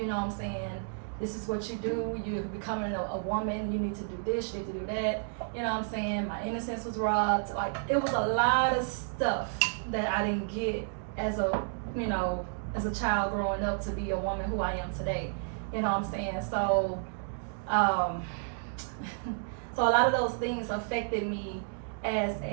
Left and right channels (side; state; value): left; silent; digital silence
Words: know what I'm saying? This is what you do, you're becoming a woman, you need to do this, you need to do that, you know what I'm saying? My innocence was robbed. Like, it was a lot of stuff that I didn't get as a child growing up to be a woman who I am today, you know what I'm saying? So, so a lot of those things affected me as